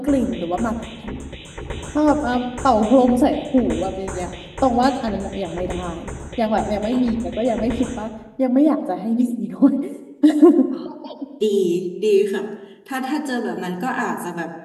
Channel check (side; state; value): both; identical; correlation 1.00